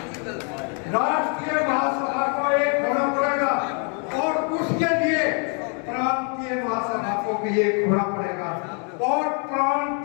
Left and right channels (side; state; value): right; quieter; 38.9 dB